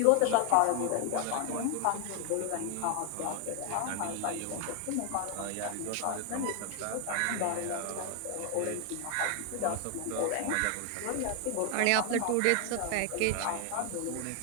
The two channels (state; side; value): different; both; correlation 0.01